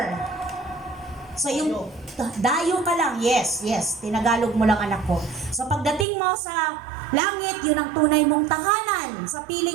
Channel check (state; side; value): drops out; left; at 6.1 s